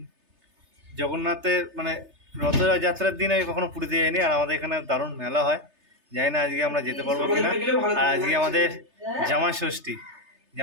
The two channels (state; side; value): late; left; 3.3 ms